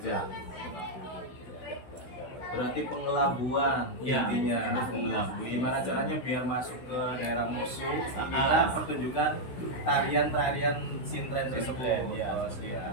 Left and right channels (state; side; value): late; right; 16 ms